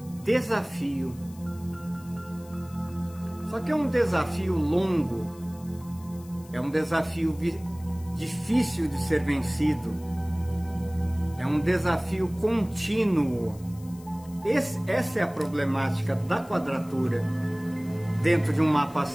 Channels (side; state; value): left; noise; hiss, 23 dB below the sound